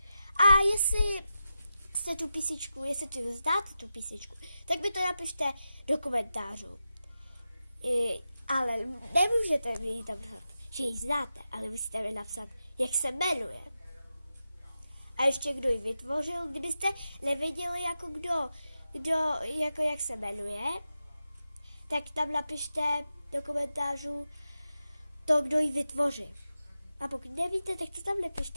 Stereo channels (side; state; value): both; inverted; correlation -0.90